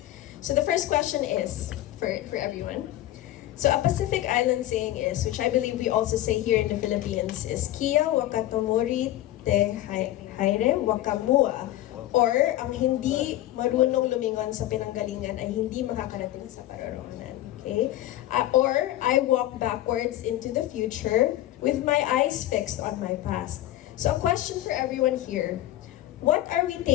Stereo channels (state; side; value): quieter; right; 14.4 dB